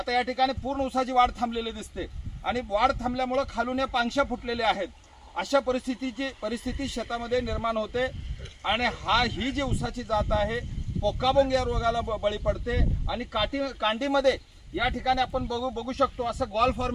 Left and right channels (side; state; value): both; identical; correlation 1.00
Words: या ठिकाणी पूर्ण ऊसाची वाढ थांबलेली दिसते आणि वाढ थांबल्यामुळं खालून या पांगशा फुटलेल्या आहेत। अशा परिस्थिती शेतामध्ये निर्माण होते आणि ही जी ऊसाची जात आहे पोकाबोंग या रोगाला बळी पडते आणि कांडीमध्ये या ठिकाणी आपण बघू शकतो असं गॉल